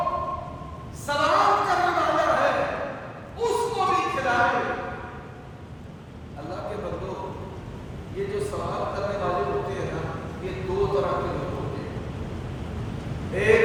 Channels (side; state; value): both; identical; correlation 1.00